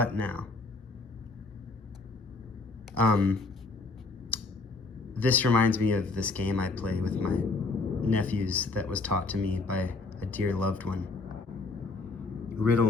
now? This reminds me of this game I play with my nephews that was taught to me by a dear loved one. Riddle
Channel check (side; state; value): right; quieter; 3.7 dB